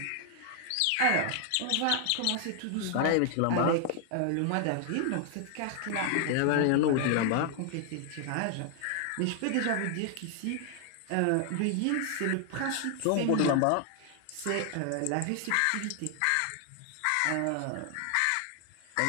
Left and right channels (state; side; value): different; both; correlation 0.00